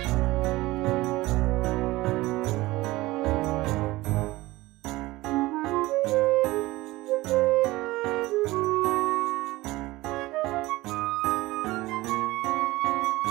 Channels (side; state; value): left; quieter; 19.1 dB